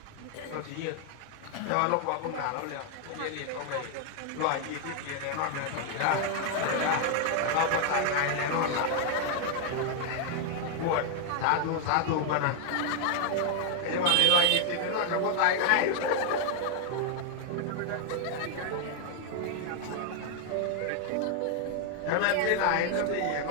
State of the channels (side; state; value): both; different; correlation 0.00